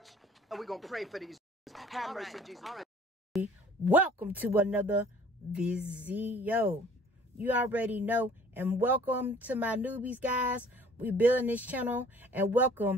and we're going to pray for these. Have mercy, Jesus. Welcome to another video. You already know. And welcome to my newbies, guys. We building this channel. And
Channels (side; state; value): both; normal; correlation 0.53